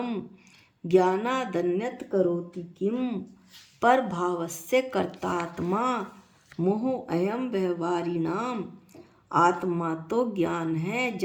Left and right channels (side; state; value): both; identical; correlation 1.00